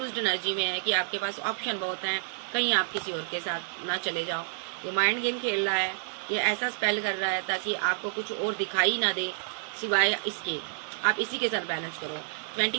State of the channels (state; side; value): silent; left; digital silence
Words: एनर्जी में है कि आपके पास ऑप्शन बहुत हैं, कहीं आप किसी और के साथ ना चले जाओ। ये माइंड गेम खेल रहा है, ये ऐसा स्पेल कर रहा है ताकि आपको कुछ और दिखाई ना दे सिवाय इसके, आप इसी के साथ बैलेंस करो।